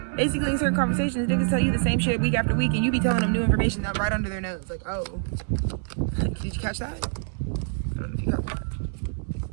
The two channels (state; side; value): silent; left; 61 dB below the other